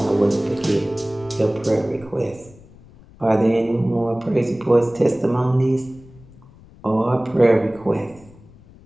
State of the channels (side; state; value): left; noise; rumble, 23 dB below the sound